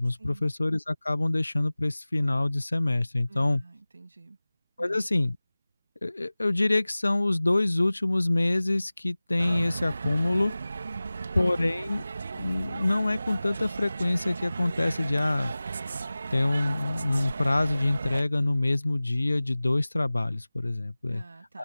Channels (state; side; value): inverted; both; correlation -0.99